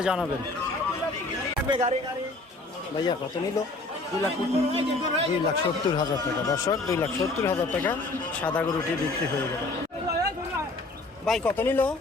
জানাবেন ভাইয়া কত নিল 2,70,000 টাকা দর্শক 2,70,000 টাকা সাদা গরুটি বিক্রি হয়ে গেল ভাই কত নিল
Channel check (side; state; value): right; quieter; 3.1 dB